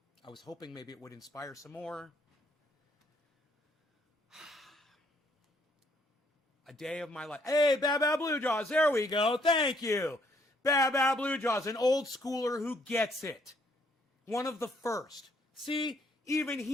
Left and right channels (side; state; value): both; normal; correlation 0.67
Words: I was hoping maybe it would inspire some more. A day of my life. Hey, Bad Bad Blue Jaws. There we go. Thank you. Bad Bad Blue Jaws, an old schooler who gets it. One of the first. See, even